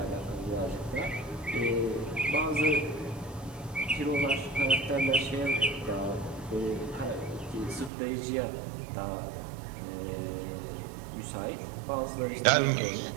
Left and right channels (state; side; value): drops out; left; at 7.9 s